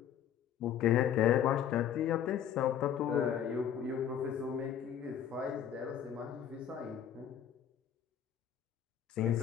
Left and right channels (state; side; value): quieter; right; 9.3 dB